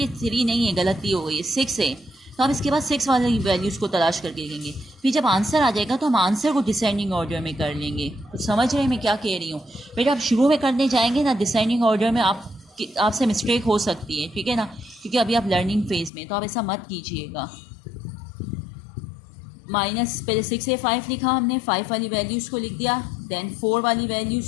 ये 3 नहीं है, गलती हो गई है, 6 है, तो आप इसके बाद 6 वाली वैल्यूज़ को तलाश करके लिखेंगे। फिर जब आंसर आ जाएगा तो हम आंसर को डिसेंडिंग ऑर्डर में कर लेंगे। तो समझ रहे हैं मैं क्या कह रही हूँ? बेटा आप शुरू में करने जाएंगे ना डिसेंडिंग ऑर्डर में, आपसे मिस्टेक हो सकती है। ठीक है ना, क्योंकि अभी आप लर्निंग फेज में, तो आप ऐसा मत कीजिएगा। माइनस पहले 6A5 लिखा हमने, 5 वाली वैल्यूज़ को लिख दिया, देन 4 वाली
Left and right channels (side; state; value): right; drops out; at 16.1 s